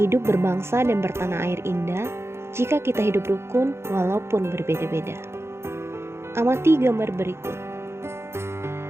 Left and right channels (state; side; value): late; left; 0.12 ms